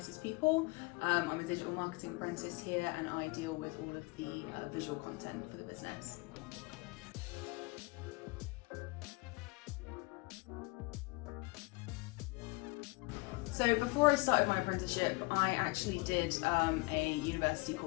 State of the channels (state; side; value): quieter; right; 26.2 dB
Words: people. I'm a digital marketing apprentice here and I deal with all of the visual content for the business. So before I started my apprenticeship, I actually did a university